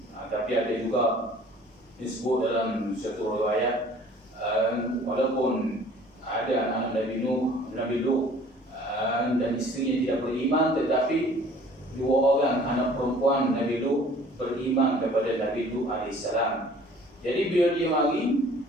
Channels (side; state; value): both; normal; correlation 0.51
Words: Tapi ada juga disebut dalam satu riwayat, walaupun ada anak Nabi Lut dan isterinya tidak beriman, tetapi 2 orang anak perempuan Nabi Lut beriman kepada Nabi Lut alaihissalam. Jadi bila dia mari,